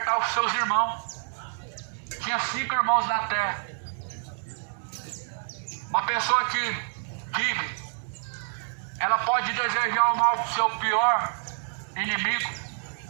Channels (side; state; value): left; silent; 60 dB below the other